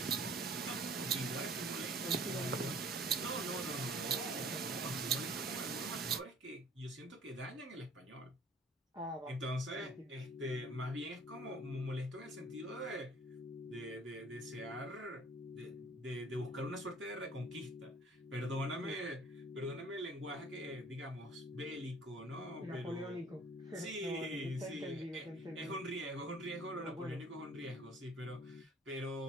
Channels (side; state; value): both; normal; correlation 0.51